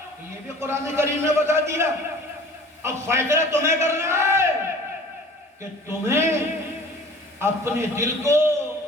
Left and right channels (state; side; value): normal; both; correlation 0.46